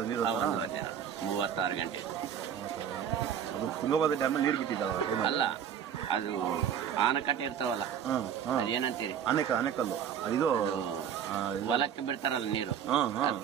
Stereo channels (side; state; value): left; quieter; 8.7 dB